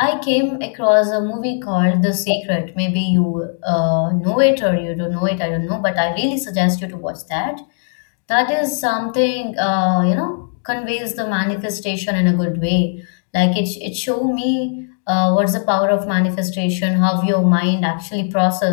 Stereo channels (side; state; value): right; silent; 67 dB below the other